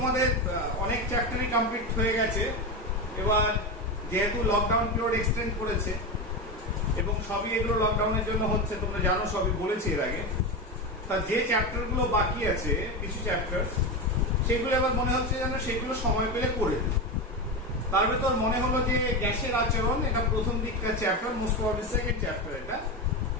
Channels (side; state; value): both; normal; correlation 0.17